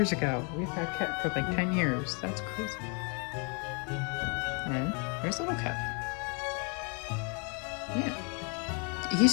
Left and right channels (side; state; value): right; quieter; 36.1 dB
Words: ago. We've had Ket for 10 years. That's crazy. And there's little Ket. Yeah. He's